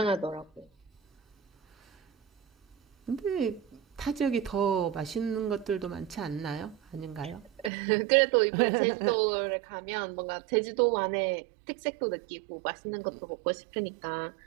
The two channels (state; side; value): drops out; left; at 7.7 s